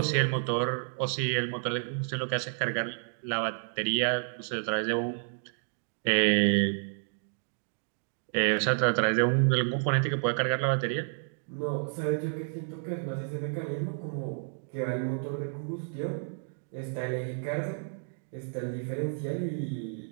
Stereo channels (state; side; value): silent; left; digital silence